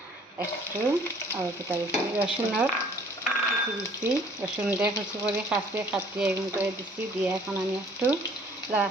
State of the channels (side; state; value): both; normal; correlation 0.56